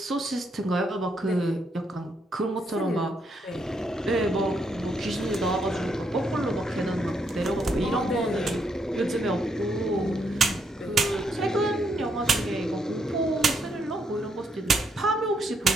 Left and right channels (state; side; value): normal; both; correlation 0.76